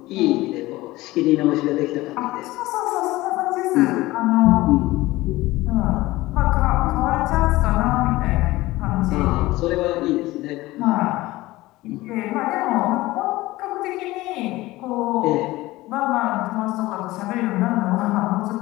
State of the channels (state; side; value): quieter; right; 18.6 dB